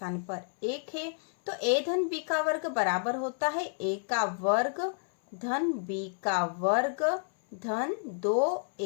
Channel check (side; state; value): right; silent; 58 dB below the other